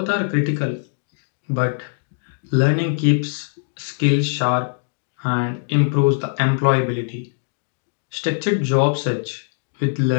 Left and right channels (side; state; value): right; silent; 64 dB below the other